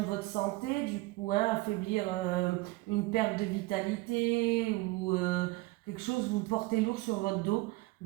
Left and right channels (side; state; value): left; quieter; 21.2 dB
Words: votre santé, du coup, hein, affaiblir une perte de vitalité ou quelque chose, vous portez lourd sur votre dos.